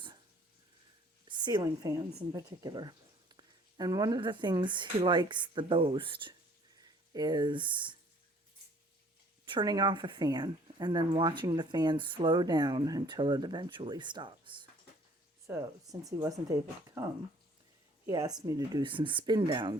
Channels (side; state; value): both; normal; correlation 0.56